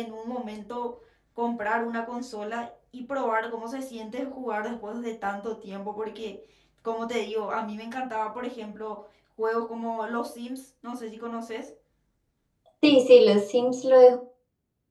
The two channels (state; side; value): identical; both; correlation 1.00